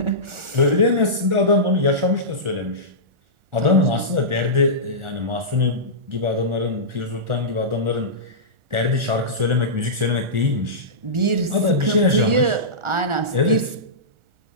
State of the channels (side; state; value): left; late; 1.4 ms